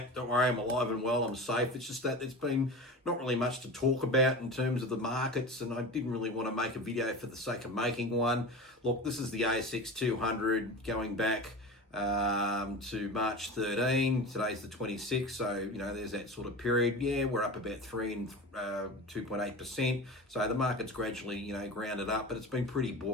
don't worry, I'm alive and well, I'm safe. It's just that there's been not really much to talk about in terms of the markets, and I didn't really want to make a video for the sake of making one. Look, this is the ASX 200 going back to March 13. Today's the 26th, so there's that sort of period. Yeah, we're up about 3 and 2.8%. So the market's gradually grounded up, but it's been pretty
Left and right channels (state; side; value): normal; both; correlation 0.30